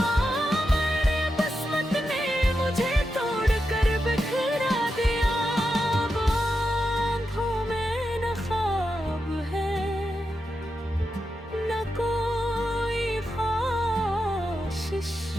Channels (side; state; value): both; normal; correlation 0.87